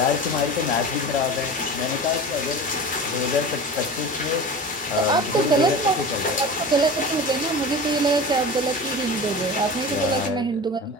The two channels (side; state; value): both; normal; correlation 0.33